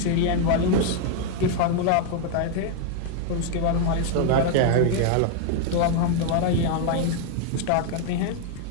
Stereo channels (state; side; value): different; both; correlation 0.00